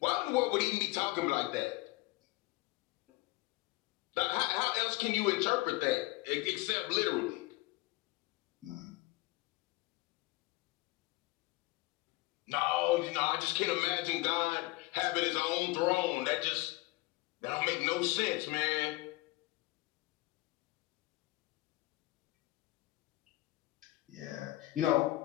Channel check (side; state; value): right; quieter; 20.3 dB